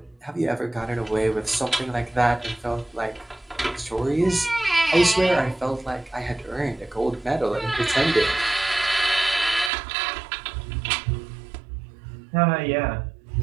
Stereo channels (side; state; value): left; drops out; at 9.7 s